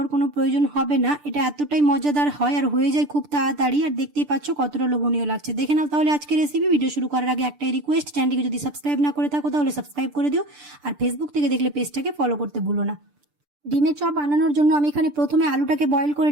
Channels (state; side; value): late; left; 6.8 ms